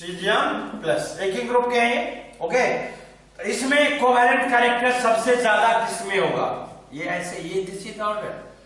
प्लस एक ही ग्रुप के हैं। ओके, इसमें कोवेलेंट कैरेक्टर सबसे ज्यादा किसमें होगा? ये ऐसे, ये दिस इज ऑर्डर,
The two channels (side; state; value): both; identical; correlation 1.00